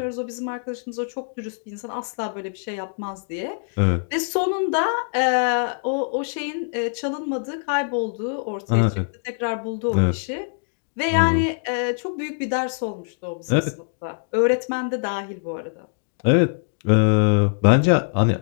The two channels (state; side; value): silent; right; digital silence